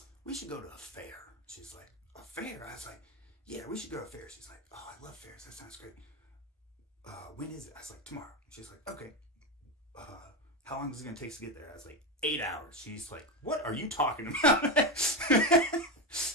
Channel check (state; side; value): normal; both; correlation 0.14